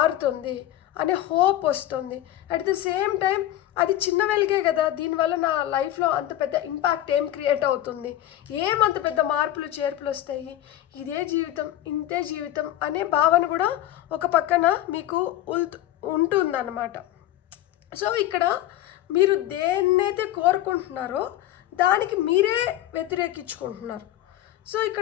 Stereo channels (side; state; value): right; quieter; 13.6 dB